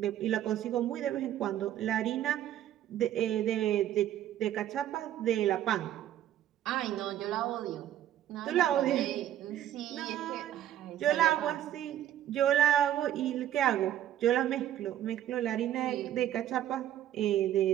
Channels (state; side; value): quieter; left; 11.9 dB